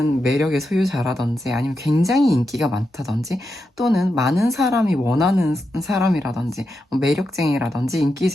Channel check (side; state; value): both; normal; correlation 0.87